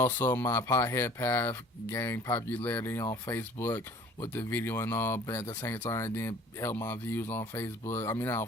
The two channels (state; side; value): normal; both; correlation 0.50